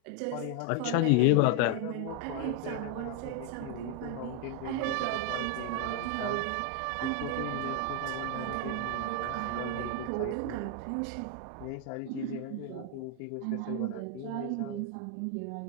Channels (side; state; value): both; different; correlation 0.01